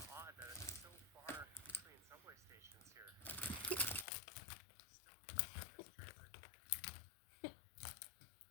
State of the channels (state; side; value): drops out; right; at 4.0 s